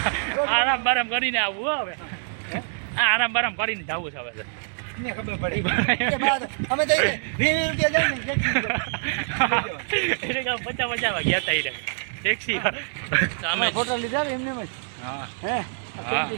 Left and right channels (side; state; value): left; silent; digital silence